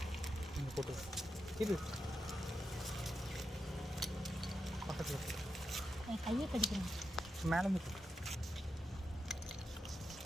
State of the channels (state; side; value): normal; both; correlation 0.87